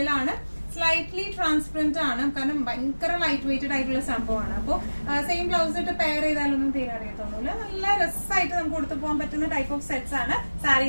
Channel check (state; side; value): inverted; both; correlation -1.00